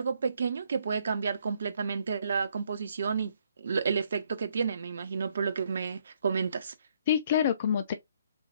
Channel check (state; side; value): inverted; both; correlation -0.69